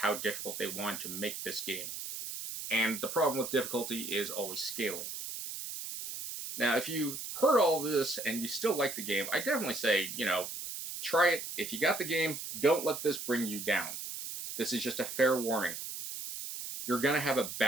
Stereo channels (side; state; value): right; noise; hiss, 7 dB below the sound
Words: difficult they want to make this game. And the problem with difficulty is always scaling. Now, if you heard all this and you still like the game, I definitely say, try it. If you got the game, don't let this bring you down. This is just a fair warning. You're going to have a